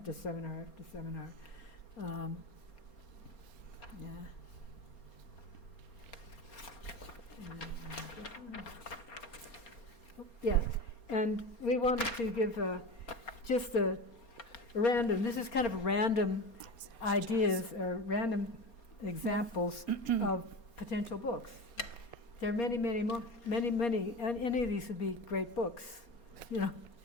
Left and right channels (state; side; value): late; right; 4.3 ms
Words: seminar after seminar. Yeah. Yeah, and we wanted to give just a random, this is kind of random ideas or random examples of potential books. There are many, many more, many, and any of these would be great books, you know.